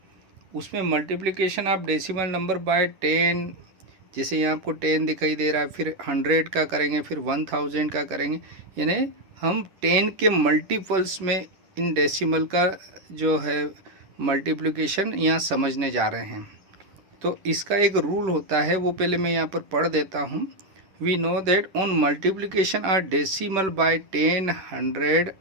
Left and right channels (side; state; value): left; late; 10 ms